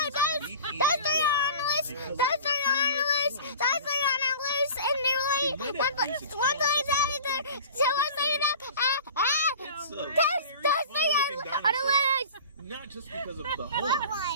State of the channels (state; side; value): inverted; both; correlation -0.40